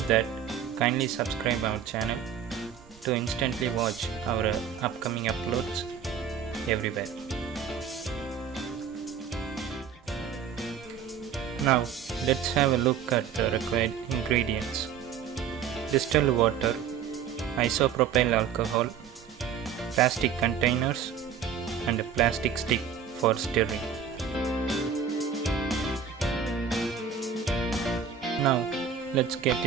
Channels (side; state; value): left; quieter; 7.6 dB